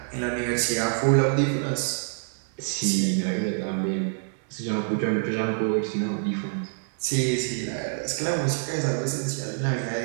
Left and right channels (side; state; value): left; silent; digital silence